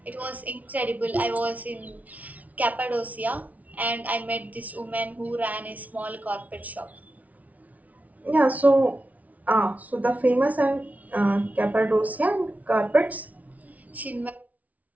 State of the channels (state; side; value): late; left; 0.072 ms